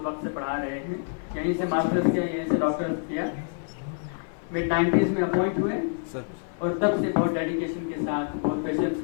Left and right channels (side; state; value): right; silent; 55 dB below the other